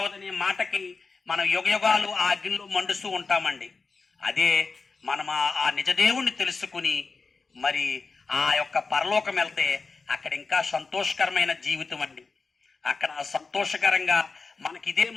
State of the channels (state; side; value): quieter; right; 4.3 dB